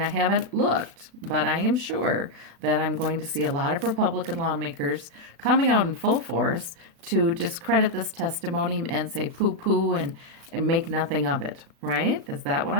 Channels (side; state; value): left; late; 36 ms